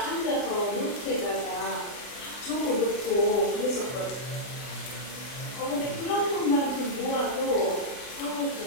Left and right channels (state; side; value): late; right; 40 ms